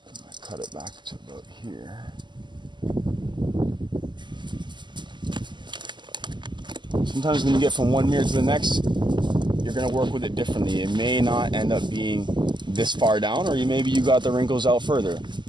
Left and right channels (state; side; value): late; left; 0.22 ms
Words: I'm gonna cut it back to about here. Sometimes when you get from one mirror to the next, you're going to work with it differently. It may not end up being this far down, or maybe you got the wrinkles out further.